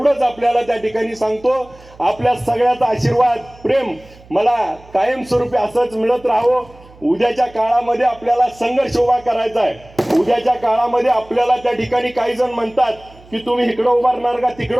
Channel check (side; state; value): right; noise; hum, 24 dB below the sound